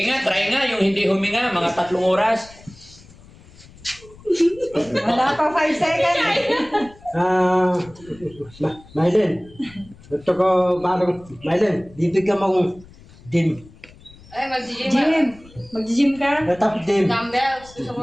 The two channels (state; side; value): noise; left; rumble, 23 dB below the sound